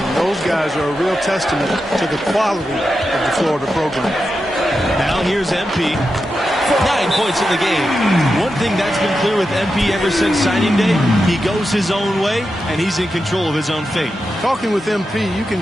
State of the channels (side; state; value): both; normal; correlation 0.89